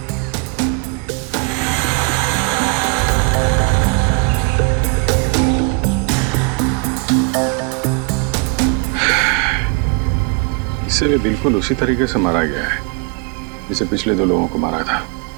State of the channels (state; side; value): quieter; left; 34.0 dB